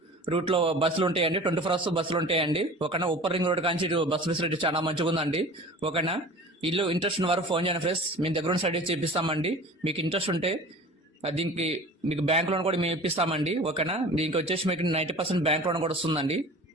రూట్ లో బస్సులు ఉంటాయండి. 24 అవర్స్ బస్సులు ఉంటాయండి. ఓకేనా. ఉప్పర్ రింగ్ రోడ్ కానీ బస్సు ఫెసిలిటీ చాలా మంచిగా ఉందండి. ఓకేనా. ఇల్లు ఇంట్రెస్ట్ ఉన్న వారు ఫోన్ చేయండి ఫ్రెండ్స్. మేము దగ్గర సైడ్ చేపిస్తామండి. మీకు ఇంట్రెస్ట్ ఉంటే దీనికి మీకు బ్యాంక్ లోన్ కూడా మేము ఇప్పిస్తామండి. ఓకేనా. దీనికి వచ్చేసి మీకు 90% బ్యాంక్ లోన్ కూడా వస్తుందండి.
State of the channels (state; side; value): normal; both; correlation 0.41